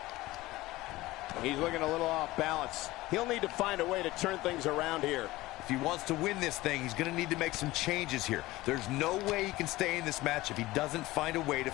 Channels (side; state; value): right; quieter; 18.5 dB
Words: He's looking a little off balance. He'll need to find a way to turn things around here. If he wants to win this thing, he's going to need to make some changes here. There's no way he can stay in this match if he doesn't find a way to